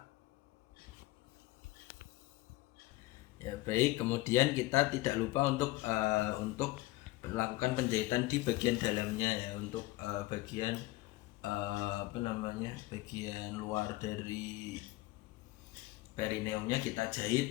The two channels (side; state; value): right; quieter; 19.2 dB